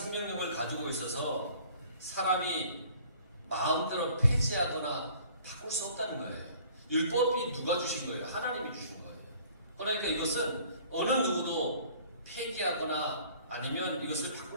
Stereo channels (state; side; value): inverted; both; correlation -0.53